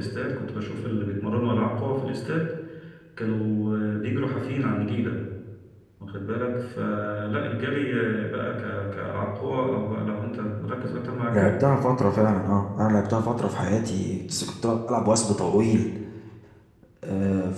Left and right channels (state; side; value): identical; both; correlation 1.00